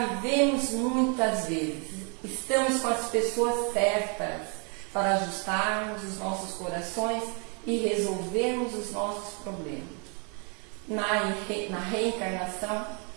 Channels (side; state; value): left; quieter; 35.8 dB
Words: vivemos muitas vezes, estamos com as pessoas certas para ajustarmos os nossos corações e resolvermos os nossos problemas. Na reencarnação,